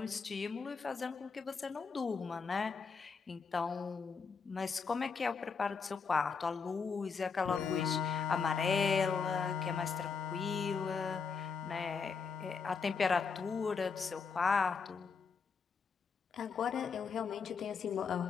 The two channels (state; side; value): quieter; right; 5.5 dB